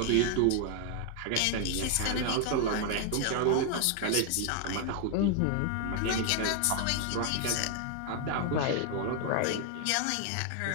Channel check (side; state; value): both; different; correlation 0.00